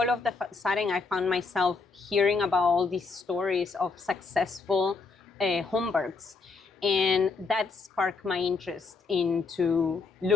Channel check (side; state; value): right; quieter; 4.4 dB